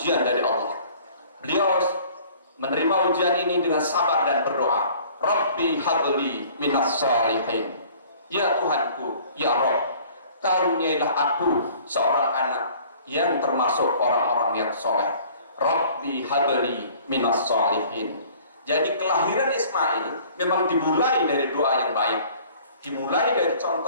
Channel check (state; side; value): inverted; both; correlation -0.51